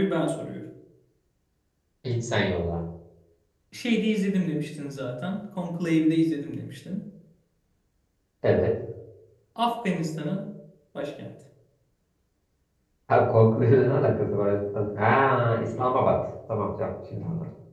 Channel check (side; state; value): both; identical; correlation 1.00